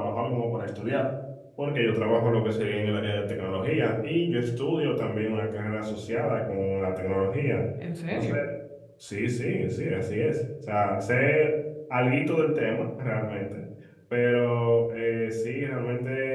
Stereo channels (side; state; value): both; identical; correlation 1.00